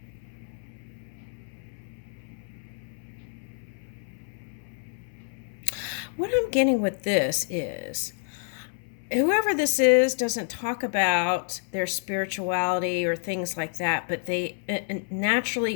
What I'm getting with this is, whoever this is doesn't talk about their spirituality or things like that, but they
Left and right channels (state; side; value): silent; right; 59 dB below the other